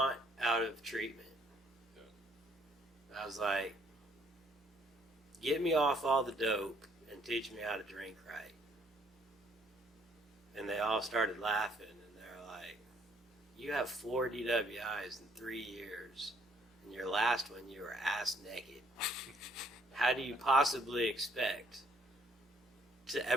out of treatment? I was like, get me off all the dope and teach me how to drink right. And they all started laughing, and they're like, you have 4 DWIs in 3 years, and your last one you were ass naked. How do you possibly expect to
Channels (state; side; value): normal; both; correlation 0.65